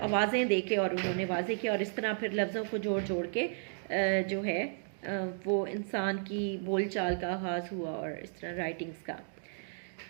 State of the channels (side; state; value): left; silent; digital silence